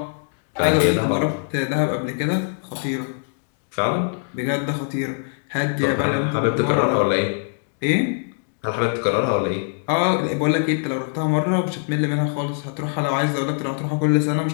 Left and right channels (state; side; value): silent; right; 59 dB below the other